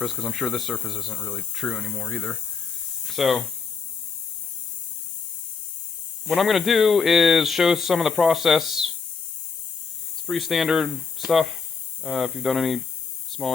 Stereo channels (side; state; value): right; quieter; 5.2 dB